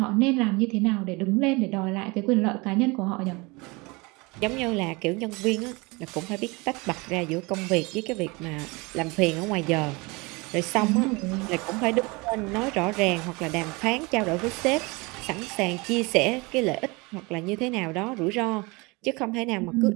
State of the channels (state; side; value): quieter; left; 26.1 dB